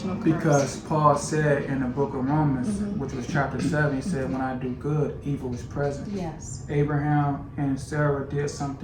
curse. Because Paul said in the book of Romans, which was chapter 7, he said, when I do good, evil is present. Yes. Abraham and Sarah did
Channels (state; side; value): identical; both; correlation 1.00